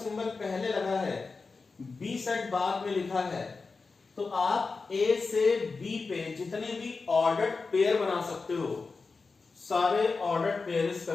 पहले लगा है, b सेट बाद में लिखा है, तो आप a से b पे जितने भी ऑर्डर्ड पेयर बना सकते हो, सारे ऑर्डर्ड पेयर इस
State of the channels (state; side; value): quieter; right; 4.3 dB